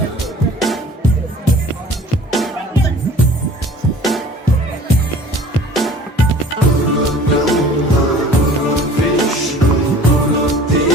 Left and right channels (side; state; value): both; normal; correlation 0.47